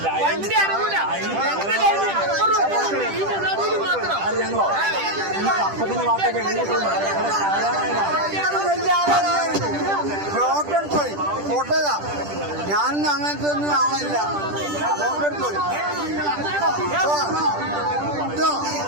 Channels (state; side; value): late; left; 10 ms